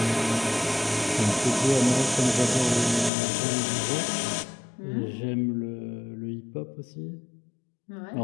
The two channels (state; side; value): drops out; right; at 3.1 s